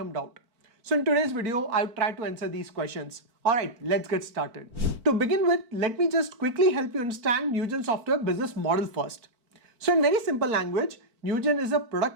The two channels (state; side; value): late; left; 4.5 ms